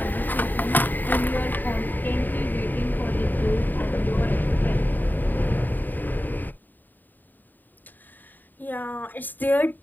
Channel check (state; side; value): late; right; 0.089 ms